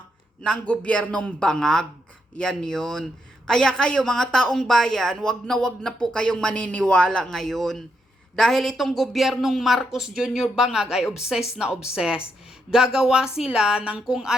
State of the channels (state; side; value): normal; both; correlation 0.80